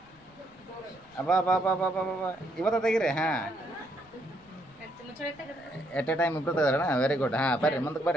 ಅಬ್ಬಾ ಬಾ ಬಾ ಬಾ ಬಾ ಬಾ ಇವತ್ತ ತೆಗಿರಿ. ಹಾಂ, ಎಟ್ ಎ ಟೈಮ್ ಇಬ್ಬರು ತೆಗೆದ್ರಣ. Very good. ಹಾಂ, ಬರ್ರಿ ಮುಂದಕ್ಕೆ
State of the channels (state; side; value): noise; left; rumble, 29 dB below the sound